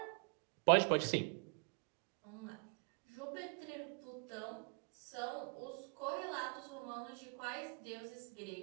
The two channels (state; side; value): quieter; left; 39.5 dB